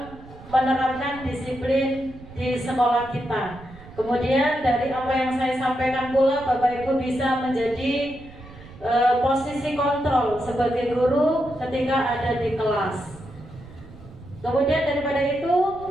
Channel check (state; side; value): noise; right; rumble, 18 dB below the sound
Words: menerapkan disiplin di sekolah kita. Kemudian dari apa yang saya sampaikan pula Bapak Ibu bisa menjadi posisi kontrol sebagai guru ketika ada di kelas. Kemudian daripada itu